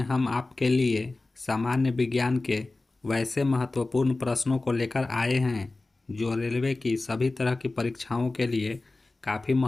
हम आपके लिए सामान्य विज्ञान के वैसे महत्वपूर्ण प्रश्नों को लेकर आए हैं जो रेलवे की सभी तरह की परीक्षाओं के लिए काफ़ी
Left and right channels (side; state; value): right; quieter; 3.2 dB